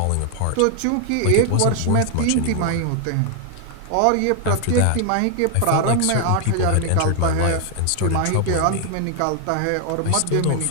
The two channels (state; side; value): different; both; correlation 0.00